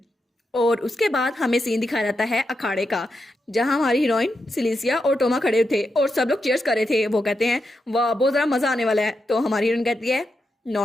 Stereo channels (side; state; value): both; normal; correlation 0.86